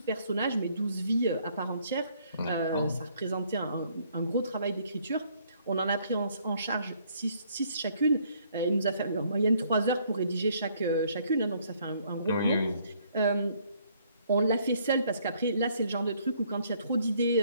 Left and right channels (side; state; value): both; inverted; correlation -0.65